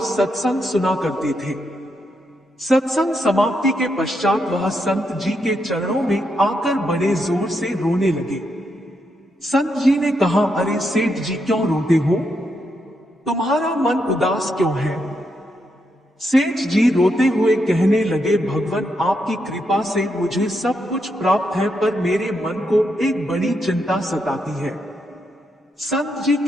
सत्संग सुना करते थे, सत्संग समाप्ति के पश्चात वह संत जी के चरणों में आकर बड़े जोर से रोने लगे। संत जी ने कहा, अरे सेठ जी क्यों रोते हो? तुम्हारा मन उदास क्यों है? सेठ जी रोते हुए कहने लगे, भगवान आपकी कृपा से मुझे सब कुछ प्राप्त है, पर मेरे मन को एक बड़ी चिंता सताती है। संत जी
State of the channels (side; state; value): both; normal; correlation 0.81